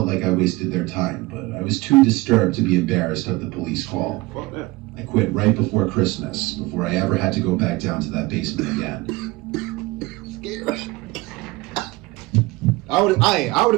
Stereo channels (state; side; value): quieter; left; 21.5 dB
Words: like I wasted their time, but I was too disturbed to be embarrassed of the police call. Fuck that. I quit right before Christmas, before I ever had to go back down to that basement again. Scared. I would